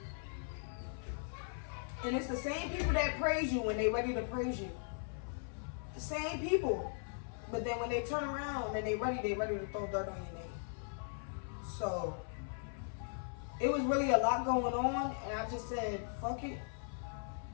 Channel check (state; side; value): silent; right; 52 dB below the other